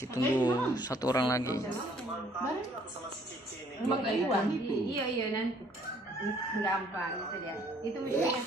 tunggu satu orang lagi. Iya nanti gampang itu dia. Itu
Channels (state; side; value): normal; both; correlation 0.61